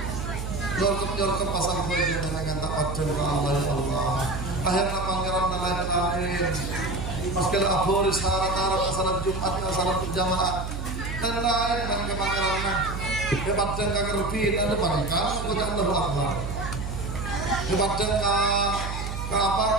nyorkep pasang baju dengan tak adil ke Allah ya Allah akhirnya pangeran lain maskala aboris harat-harat salat Jumat salat berjamaah dan lain dengan pangeran hebat dan kagerbin ada pangeran kepada Allah Akbar hebat dan apa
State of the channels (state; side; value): noise; right; hum, 5 dB below the sound